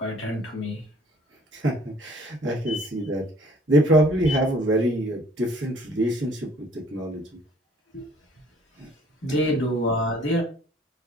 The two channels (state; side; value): normal; both; correlation 0.56